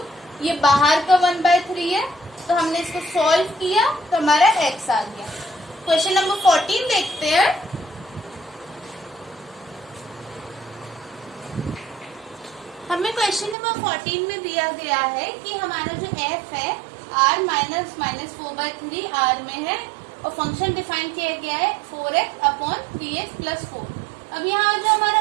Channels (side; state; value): left; drops out; at 13.6 s